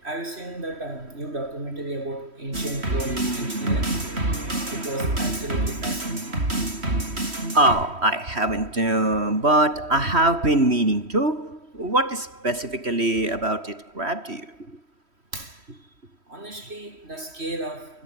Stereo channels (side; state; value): left; late; 3.1 ms